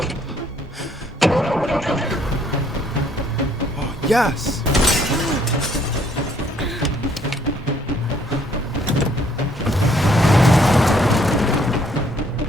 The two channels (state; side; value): normal; both; correlation 0.65